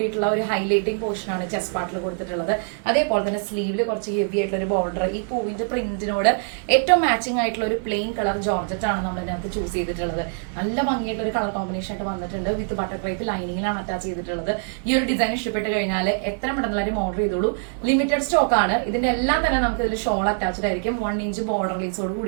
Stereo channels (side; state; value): left; silent; digital silence